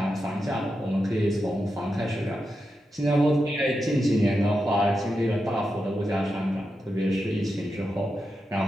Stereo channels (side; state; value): both; normal; correlation 0.88